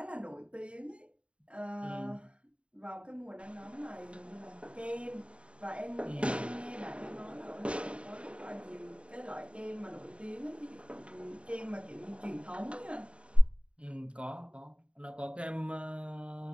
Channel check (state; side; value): late; left; 0.059 ms